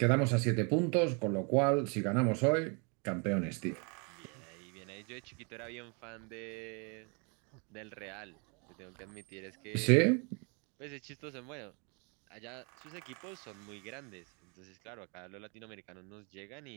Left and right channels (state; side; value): quieter; left; 34.3 dB